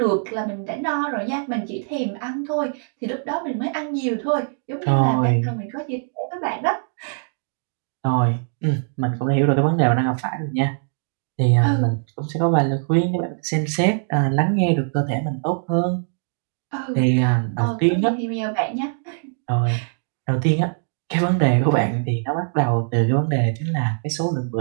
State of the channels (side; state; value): left; silent; digital silence